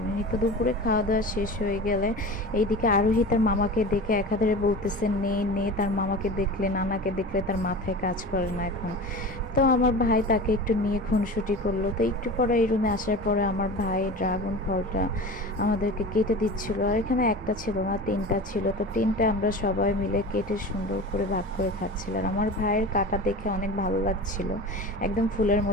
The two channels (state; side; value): normal; both; correlation 0.33